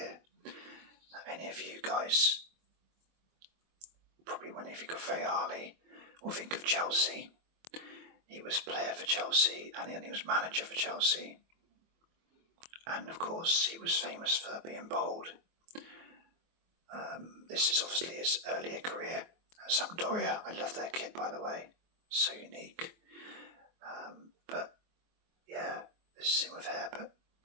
Now, any of you guys, probably when you think of Fayali or think of Chelsea, he was player for Chelsea and he was manager for Chelsea. And of course he was famous for being bold. This is obviously his earlier career at Sampdoria. I love their kit, by the way, so unique. But yeah, this is him with hair, but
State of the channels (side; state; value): left; late; 23 ms